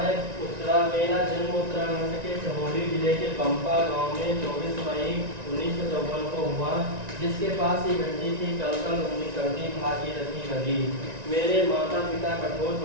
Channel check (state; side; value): late; left; 1.9 ms